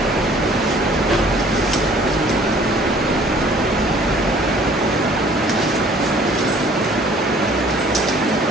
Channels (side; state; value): both; normal; correlation 0.54